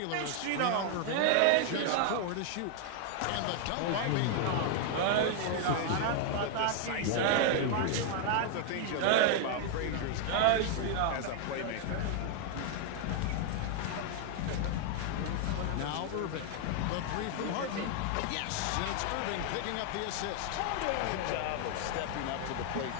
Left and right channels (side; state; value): both; different; correlation 0.00